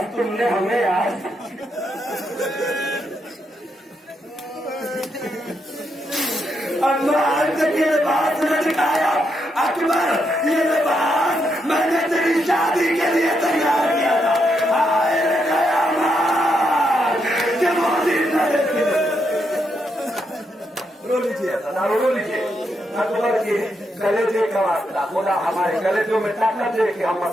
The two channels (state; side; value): normal; both; correlation 0.80